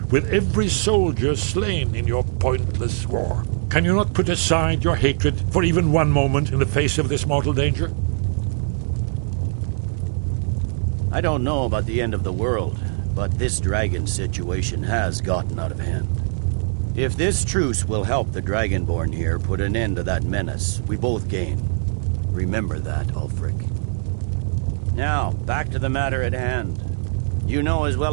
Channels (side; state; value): left; silent; digital silence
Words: with every soldier slain in your pointless war. Can you not put aside your hatred for even one moment in the face of this mortal danger? I don't know about the end of the world, but this dragon situation has gotten out of hand. If this truce will help the Dragonborn here put an end to that menace, we both gain. Remember that, Ulfric. Now, back to the matter at hand. You know as